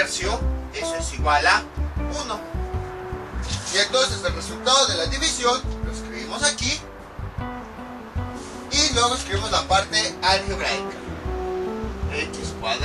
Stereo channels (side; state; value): both; identical; correlation 1.00